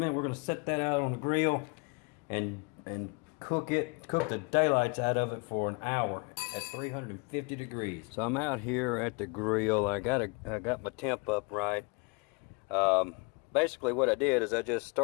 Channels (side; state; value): right; quieter; 32.1 dB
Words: We're gonna set that out on the grill, and cook the daylights out of it for an hour at 350 degrees. So I'm out here at the grill. I got my temp up right. Basically what I did is I just